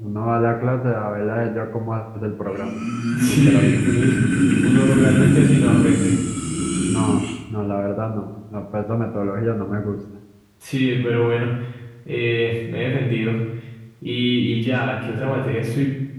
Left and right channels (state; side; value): identical; both; correlation 1.00